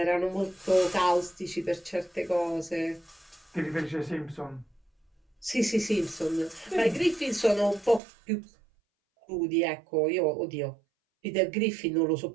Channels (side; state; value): left; drops out; at 8.0 s